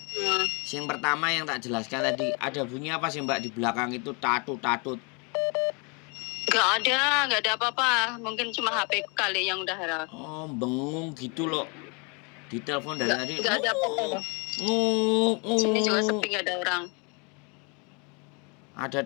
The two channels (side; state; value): right; quieter; 32.9 dB